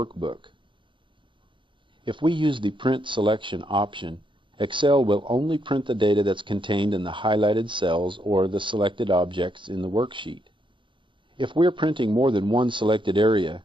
If we use the Print Selection option, Excel will only print the data that's contained in the highlighted cells or the selected objects in the worksheet. If we're printing more than one selected area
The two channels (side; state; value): left; late; 0.24 ms